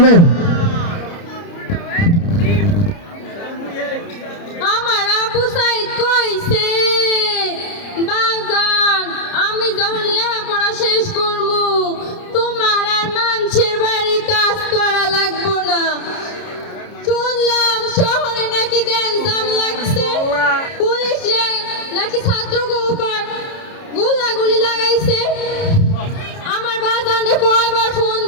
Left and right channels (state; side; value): late; right; 30 ms